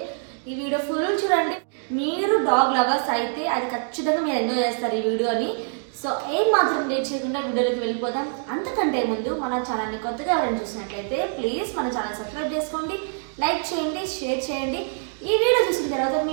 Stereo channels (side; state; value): left; silent; 59 dB below the other